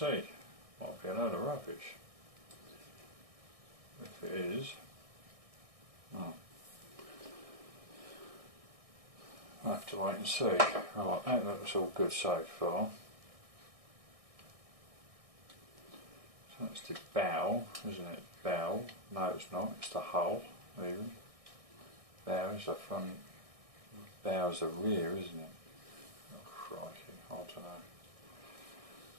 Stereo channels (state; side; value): late; left; 1.6 ms